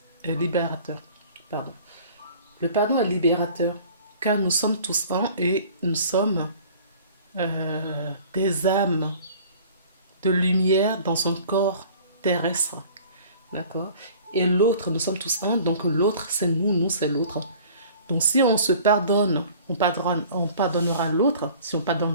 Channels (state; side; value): inverted; both; correlation -0.48